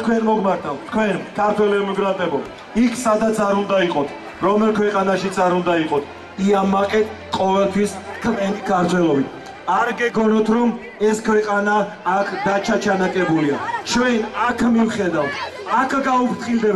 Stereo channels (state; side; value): identical; both; correlation 1.00